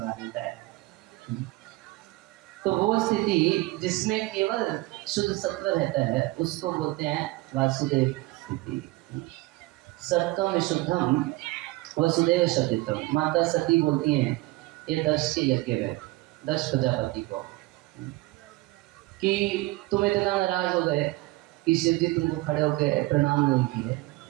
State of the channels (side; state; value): left; quieter; 20.6 dB